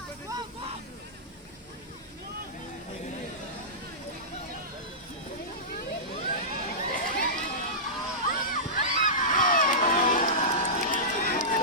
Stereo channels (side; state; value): both; normal; correlation -0.17